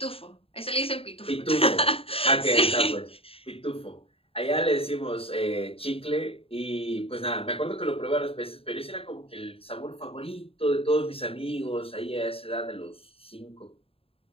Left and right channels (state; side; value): late; right; 0.27 ms